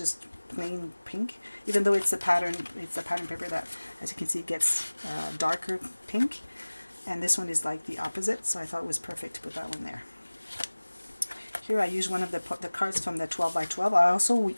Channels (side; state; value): both; inverted; correlation -1.00